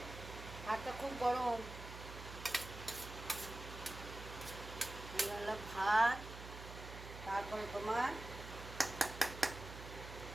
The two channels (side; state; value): right; noise; hum, 11 dB below the sound